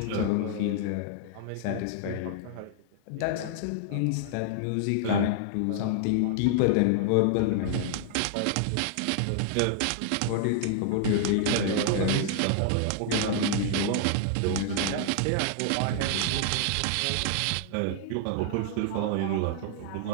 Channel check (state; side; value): different; both; correlation -0.01